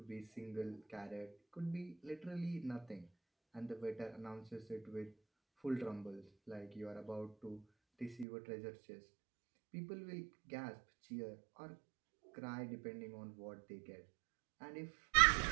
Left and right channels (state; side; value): drops out; left; at 8.2 s